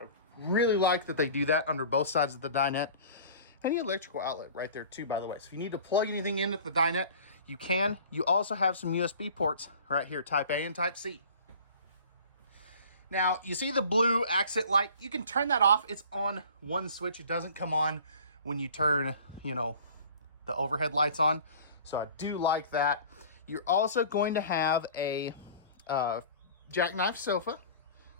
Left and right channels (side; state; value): both; inverted; correlation -0.44